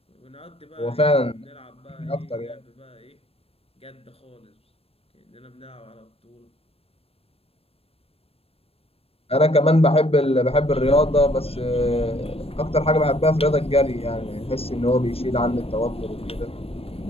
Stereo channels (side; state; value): right; late; 0.28 ms